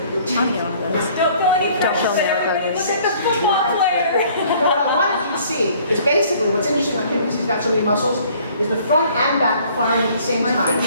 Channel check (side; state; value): both; inverted; correlation -0.57